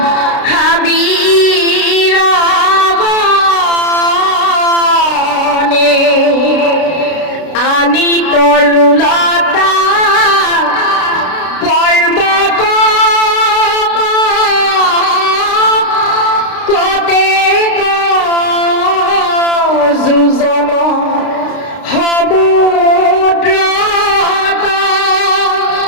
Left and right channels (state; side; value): late; right; 32 ms